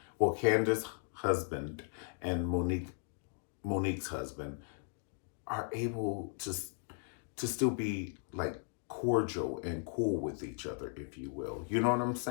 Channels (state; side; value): silent; right; 53 dB below the other